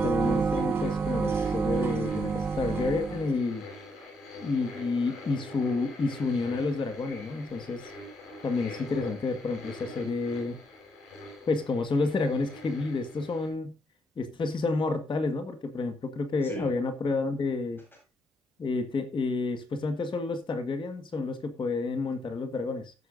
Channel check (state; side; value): normal; both; correlation 0.76